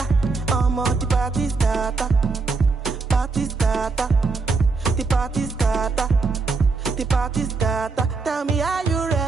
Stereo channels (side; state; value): left; quieter; 4.2 dB